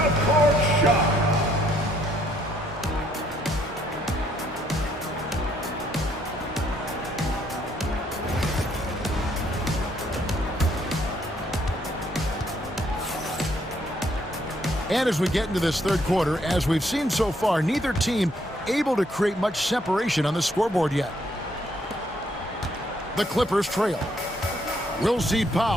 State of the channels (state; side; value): normal; both; correlation 0.69